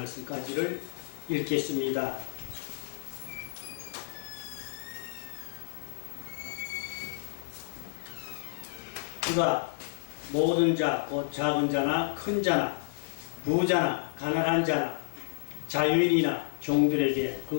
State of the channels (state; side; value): silent; right; digital silence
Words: 읽겠습니다. 그가 모든 자, 곧 작은 자나 큰 자나 부자나 가난한 자나 자유인이나 종들에게